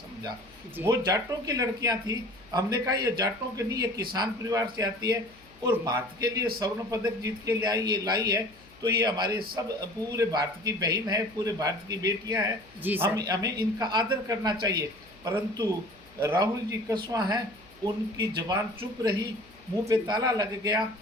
वो जाटों की लड़कियां थी। हमने कहा ये जाटों के नहीं, ये किसान परिवार से आती है और भारत के लिए स्वर्ण पदक जीत के लाई है, तो ये हमारे सब पूरे भारत की बहन है, पूरे भारत की बेटियां हैं। हमें इनका आदर करना चाहिए। परंतु राहुल जी कसवां हैं, उनकी जबान चुप रही, मुंह पे ताला लग गया।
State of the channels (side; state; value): left; noise; hum, 26 dB below the sound